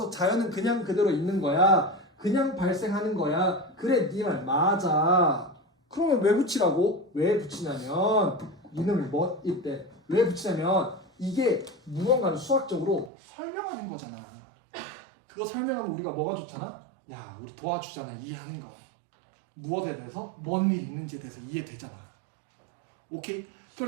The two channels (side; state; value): left; drops out; at 13.1 s